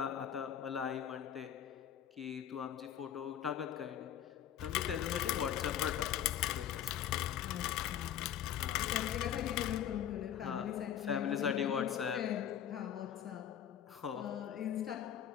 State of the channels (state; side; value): quieter; right; 9.8 dB